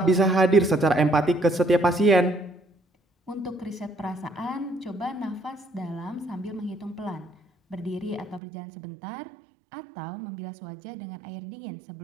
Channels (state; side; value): drops out; left; at 8.4 s